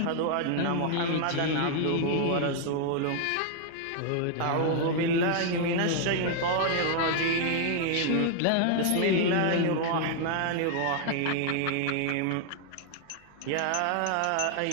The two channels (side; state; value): both; different; correlation 0.00